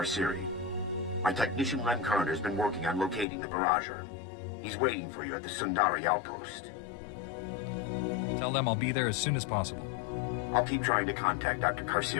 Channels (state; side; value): drops out; right; at 3.2 s